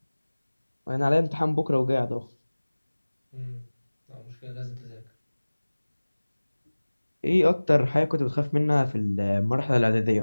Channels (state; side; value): inverted; both; correlation -1.00